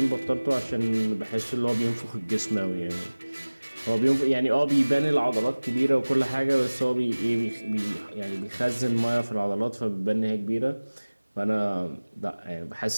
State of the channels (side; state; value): both; inverted; correlation -1.00